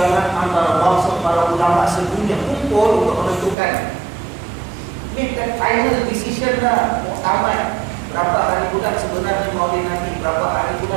antara bangsa para ulama sedunia kumpul untuk menentukan. Make that final decision lah, muktamad. Berapa hari bulan sebenarnya Maulid Nabi, berapa hari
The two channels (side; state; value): left; drops out; at 3.6 s